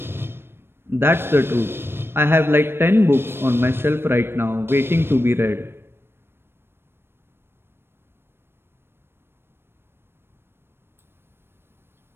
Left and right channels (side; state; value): left; late; 0.11 ms